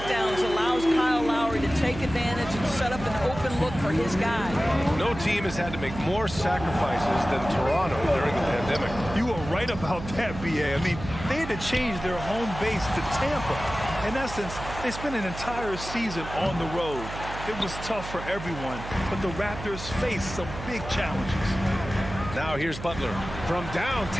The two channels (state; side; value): noise; right; hum, 10 dB below the sound